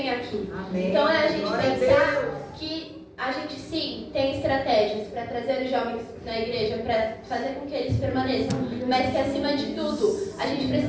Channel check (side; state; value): both; identical; correlation 1.00